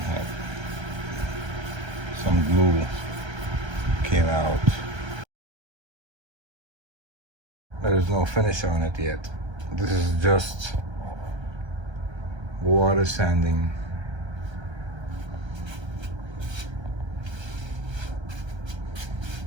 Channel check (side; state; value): left; late; 1.3 ms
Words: some glue came out. There's no finish on it yet. This is just water sanding.